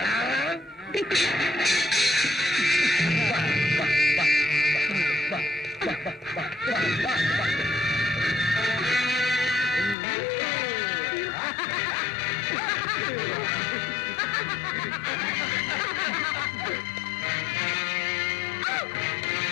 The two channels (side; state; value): right; drops out; at 10.0 s